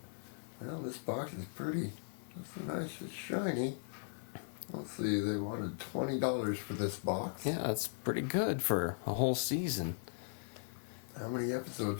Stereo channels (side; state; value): right; silent; digital silence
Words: Well, this box is pretty. It's nice, it's shiny. Let's see, they wanted $20 for this box. Yeah, that's pretty good for a whole season. How many